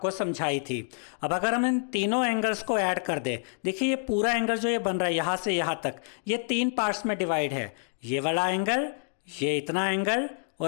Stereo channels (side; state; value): right; silent; digital silence